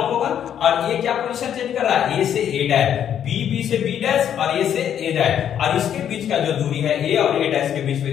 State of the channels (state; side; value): quieter; right; 9.4 dB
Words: होगा, और ये क्या पोजीशन चेंज कर रहा है, A से A डैश, B से B डैश, और A से A डैश, और इसके बीच का जो दूरी है A और A डैश के बीच